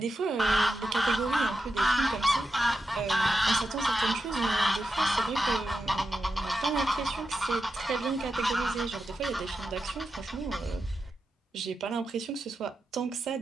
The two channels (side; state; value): both; normal; correlation 0.89